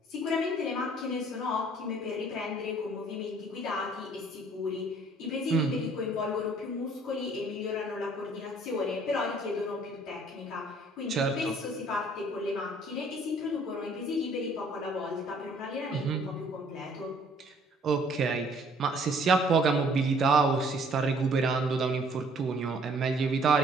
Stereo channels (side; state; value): both; normal; correlation 0.58